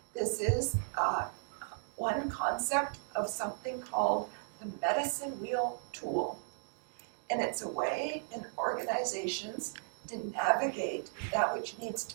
This is one concept of something called the medicine wheel tool. And it's a way in organizations to navigate that which needs to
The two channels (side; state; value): left; silent; digital silence